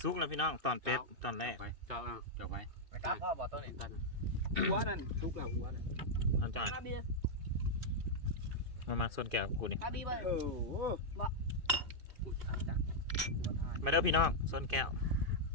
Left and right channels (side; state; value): left; late; 2.5 ms